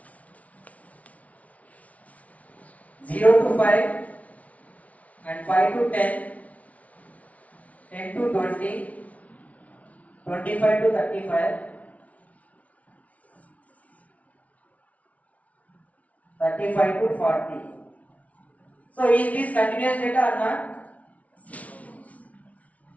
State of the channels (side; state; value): right; late; 0.068 ms